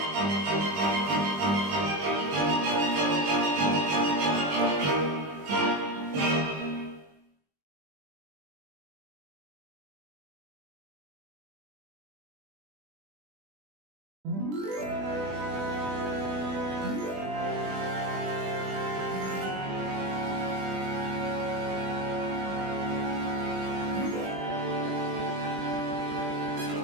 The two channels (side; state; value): left; late; 20 ms